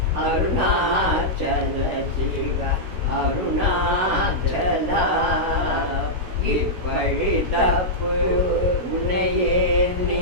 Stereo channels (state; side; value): late; left; 16 ms